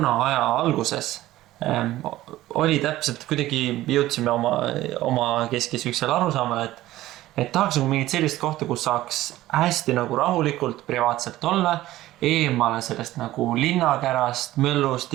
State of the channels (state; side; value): quieter; left; 15.7 dB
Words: aja alguses oli täpselt kuidagi jõudsime oma keskis üksel arusaamale, et tahaks nagu mingit sellist kohta, kus saaks hästi nagu rahulikult, privaatselt olla, eemale sellest nagu linnakärast, möllust,